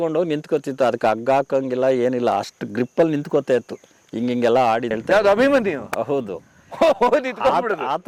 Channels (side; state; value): both; identical; correlation 1.00